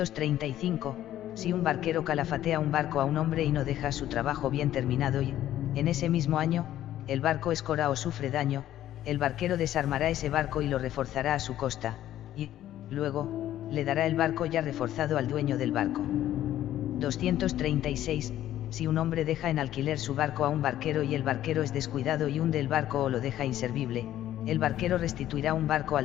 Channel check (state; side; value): quieter; right; 12.7 dB